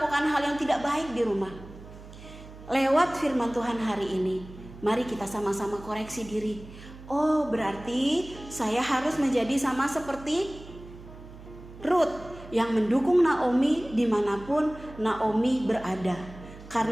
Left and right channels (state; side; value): noise; right; hum, 17 dB below the sound